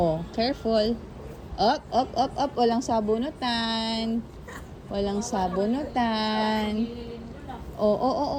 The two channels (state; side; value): identical; both; correlation 1.00